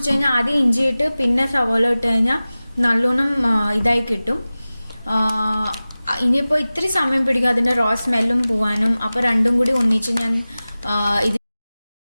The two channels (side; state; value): both; inverted; correlation -0.97